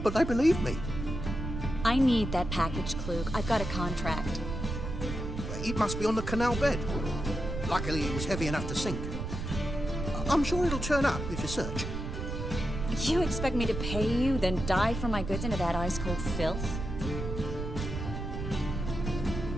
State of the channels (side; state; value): right; noise; rumble, 5 dB below the sound